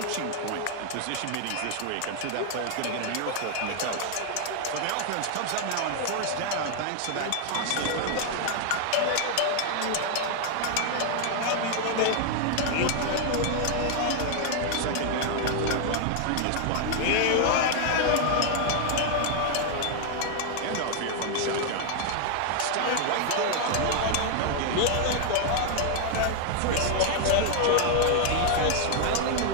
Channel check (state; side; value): different; both; correlation 0.00